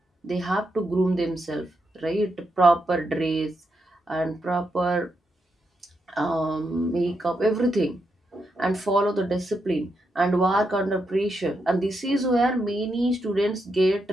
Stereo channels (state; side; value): normal; both; correlation 0.83